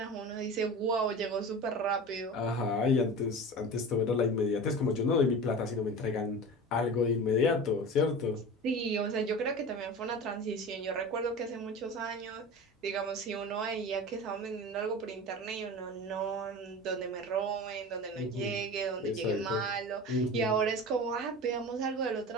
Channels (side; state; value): both; normal; correlation 0.32